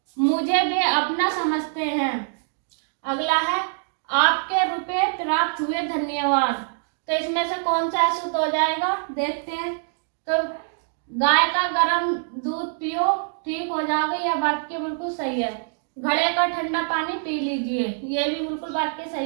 मुझे वे अपना समझते हैं। अगला है, आपके रुपए प्राप्त हुए धन्यवाद। तो इसमें से कौन सा अशुद्ध हो जाएगा, देखते हैं। तो गाय का गर्म दूध पियो ठीक हो जाओगे, यह वाक्य बिल्कुल सही है। घड़े का ठंडा पानी पी लीजिए, ये भी बिल्कुल वाक्य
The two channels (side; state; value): left; silent; digital silence